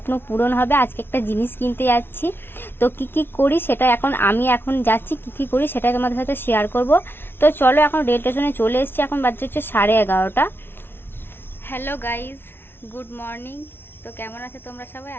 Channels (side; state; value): right; late; 0.11 ms